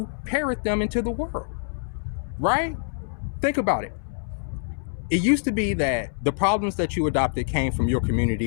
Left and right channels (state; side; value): silent; right; 61 dB below the other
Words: parrot them into the world. Right? Think about it. It used to be that the problems that you adopted came from your